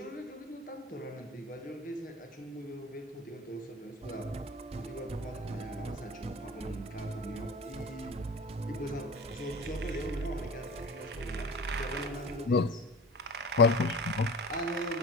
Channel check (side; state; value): both; normal; correlation 0.36